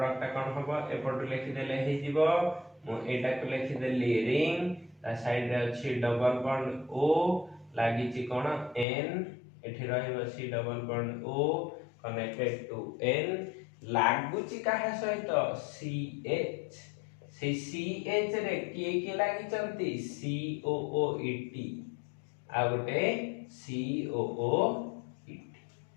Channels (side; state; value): right; drops out; at 8.8 s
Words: कोन हबो एपट लिखि देले हे जीवो मु एटा को लिखि देली रिंग ता साइड रे अछि डबल बॉन्ड O लागि छि कोन N एठी रहइबो C double bond O connected to N लागु छि काहा सहित CH से CH रे किए लागि चंती COOET आ गोटे COOET